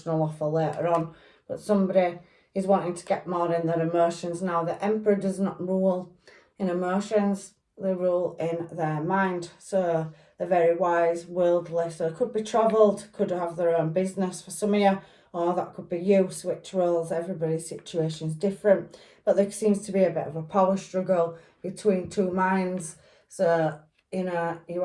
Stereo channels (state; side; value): identical; both; correlation 1.00